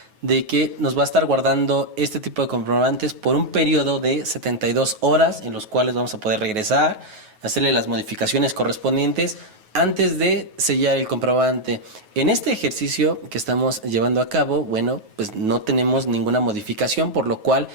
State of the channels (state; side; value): late; left; 9.3 ms